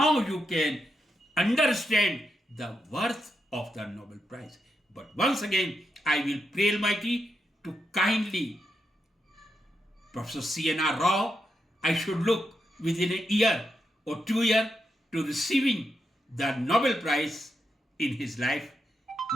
you can understand the worth of the Nobel Prize. But once again, I will pray Almighty to kindly Professor C.N.R. Rao, I should look within a year or 2 years to receiving the Nobel Prize in his life.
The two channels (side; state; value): both; normal; correlation 0.84